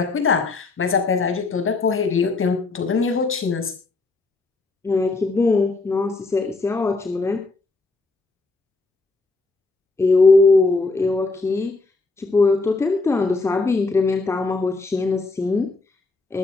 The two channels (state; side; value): quieter; right; 3.6 dB